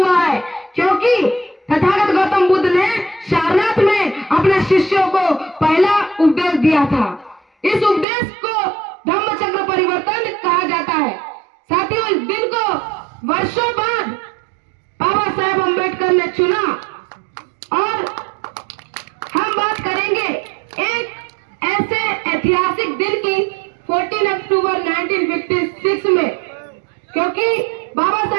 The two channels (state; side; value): drops out; left; at 8.1 s